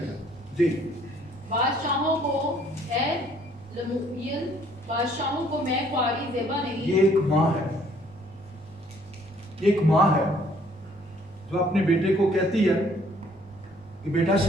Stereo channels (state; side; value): normal; both; correlation 0.62